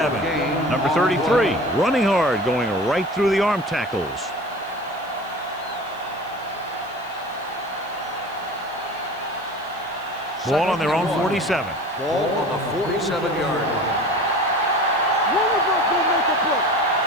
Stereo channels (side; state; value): left; noise; hiss, 27 dB below the sound